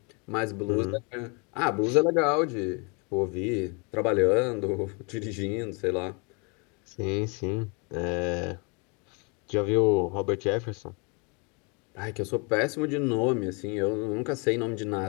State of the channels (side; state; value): right; quieter; 32.7 dB